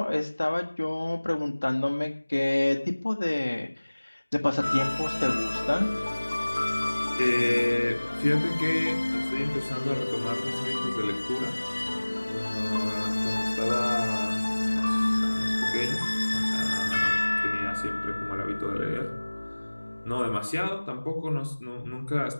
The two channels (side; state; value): both; inverted; correlation -1.00